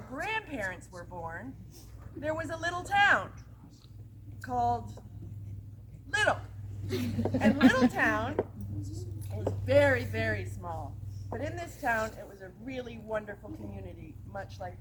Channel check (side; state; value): both; identical; correlation 1.00